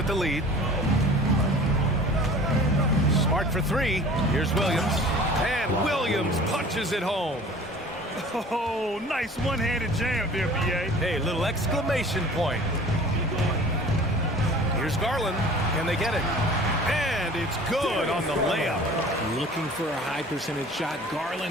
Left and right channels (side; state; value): both; normal; correlation 0.45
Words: the lead. Smart for 3. Here's Williams. And Williams punches it home. Oh, nice one-handed jam there, B.A. Hey, little exclamation point. Here's Garland. Can they get it? And it's good on the layup. Looking for a high percentage shot.